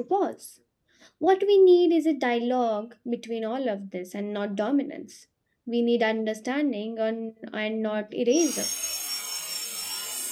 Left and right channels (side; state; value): both; identical; correlation 1.00